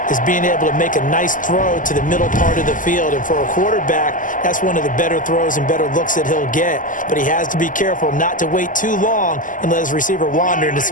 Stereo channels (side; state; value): right; late; 0.38 ms